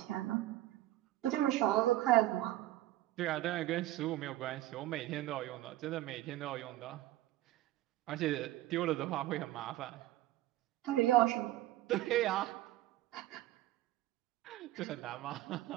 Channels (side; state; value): left; quieter; 15.3 dB